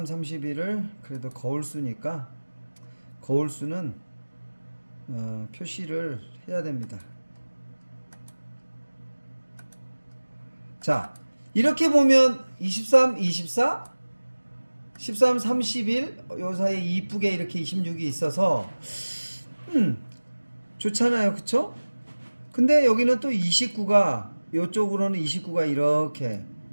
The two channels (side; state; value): both; inverted; correlation -1.00